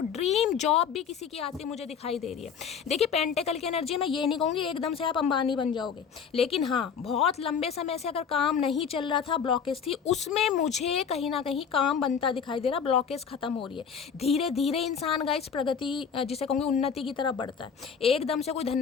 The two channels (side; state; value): right; quieter; 6.9 dB